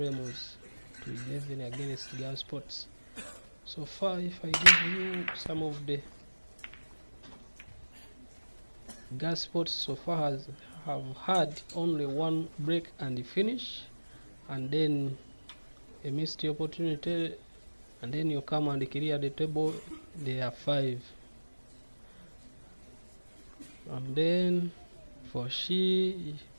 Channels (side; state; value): both; inverted; correlation -1.00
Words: to 11 against GARETH. So far, if I give you some of the GARETH so far have had only one break and finish, and then a missed opportunity, and then you come and clear the table. There are 5. And then for